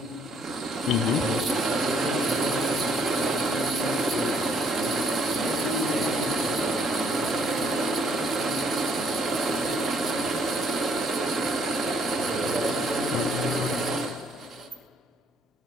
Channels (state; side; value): normal; both; correlation 0.66